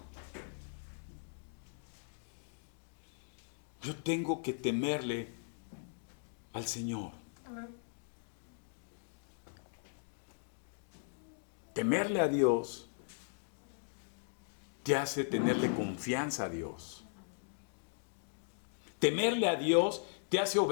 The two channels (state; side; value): silent; right; digital silence